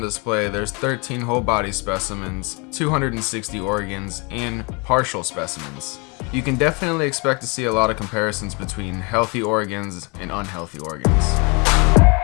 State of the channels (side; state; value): right; quieter; 30.7 dB